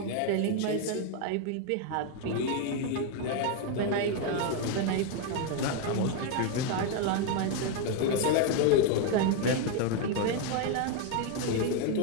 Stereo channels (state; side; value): different; both; correlation 0.01